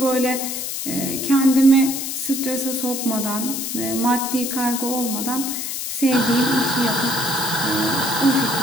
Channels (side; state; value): left; noise; hiss, 4 dB below the sound